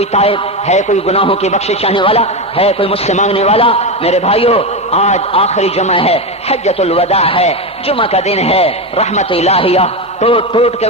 تائب، ہے کوئی گناہوں کی بخشش چاہنے والا، ہے کوئی مجھ سے مانگنے والا۔ میرے بھائیو، آج آخری جمعہ ہے، حجۃ الوداع ہے، جمعہ کا دن ہے، رحمت الہیہ ٹوٹ ٹوٹ کے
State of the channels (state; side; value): normal; both; correlation 0.14